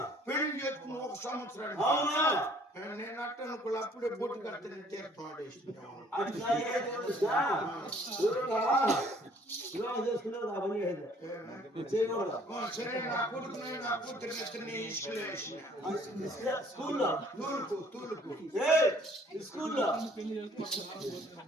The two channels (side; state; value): both; normal; correlation 0.58